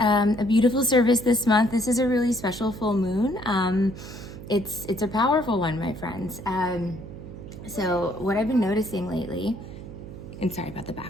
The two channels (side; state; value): right; noise; hum, 13 dB below the sound